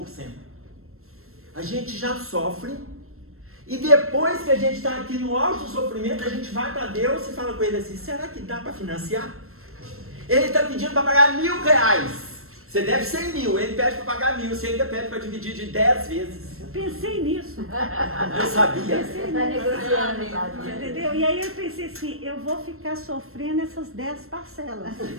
A gente já sofre, e depois que a gente está aqui no auge do sofrimento, a gente vai para Deus e fala com ele assim: será que dá para financiar? Ele está pedindo para pagar R$1.000. Você deve 100 mil, ele pede para pagar 1.000, você ainda pede para dividir de 10 vezes. Eu pensei nisso. Eu sabia. Pensei Tá nisso. negociando, sabe? Entendeu? E aí eu pensei assim, eu vou ficar sofrendo essas 10 parcelas.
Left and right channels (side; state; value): left; late; 0.62 ms